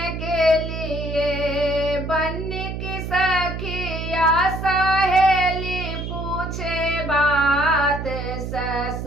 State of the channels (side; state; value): right; noise; hum, 5 dB below the sound